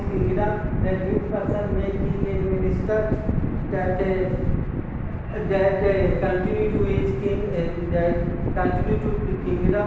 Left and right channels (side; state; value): both; identical; correlation 1.00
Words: kingdom, that which person may king and minister, that continue to his king, that continue to the